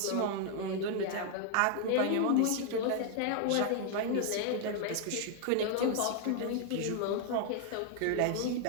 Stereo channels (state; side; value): different; both; correlation 0.00